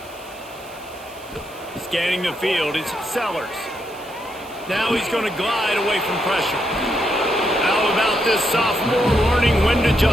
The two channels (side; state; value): right; noise; hiss, 22 dB below the sound